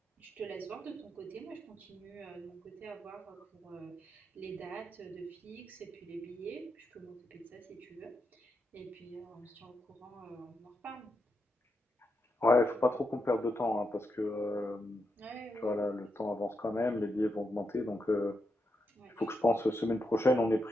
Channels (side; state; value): both; normal; correlation 0.84